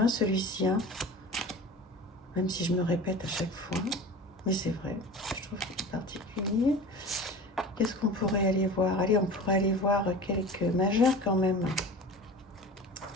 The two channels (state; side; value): normal; both; correlation 0.36